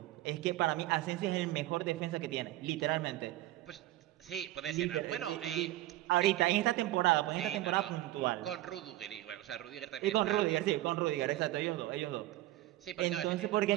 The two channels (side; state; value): left; quieter; 16.1 dB